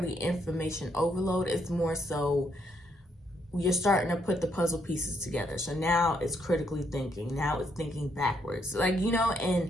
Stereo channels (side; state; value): both; normal; correlation 0.74